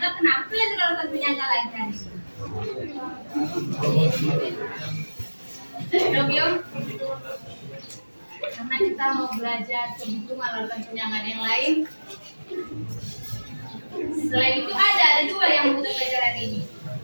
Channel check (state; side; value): inverted; both; correlation -1.00